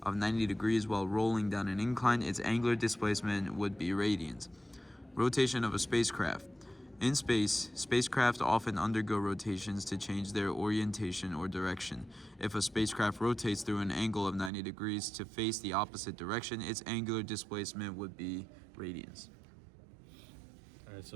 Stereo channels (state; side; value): drops out; left; at 14.5 s